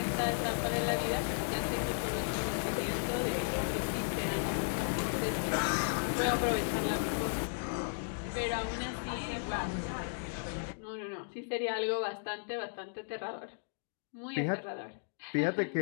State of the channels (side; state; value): right; silent; digital silence